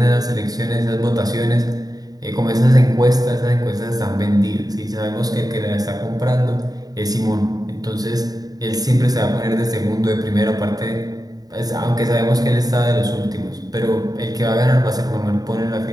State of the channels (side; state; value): left; late; 0.18 ms